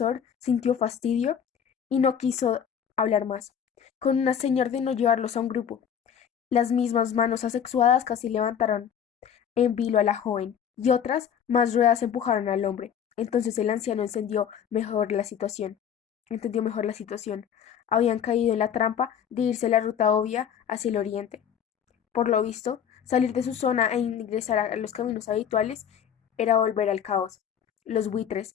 sintió fastidio y no quiso hablar más. Con una seña ordenó llevarlos a un grupo. Las mismas manos asexuadas casi levantaron en vilo a la joven, y otras más ruedas empujaron al hombre. Entonces el anciano entendió mejor la situación. Habían caído en la trampa de irse la ruta obvia hacia el oriente. Por lo visto, salir de su zona e ingresar a los caminos habituales era volver al caos. Los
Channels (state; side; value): quieter; right; 8.4 dB